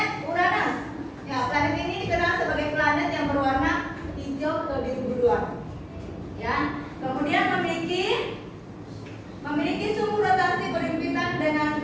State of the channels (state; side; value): identical; both; correlation 1.00